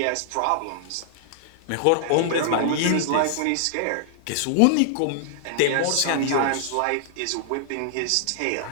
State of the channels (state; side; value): different; both; correlation -0.01